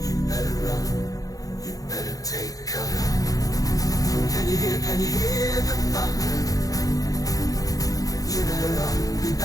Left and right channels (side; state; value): right; late; 0.17 ms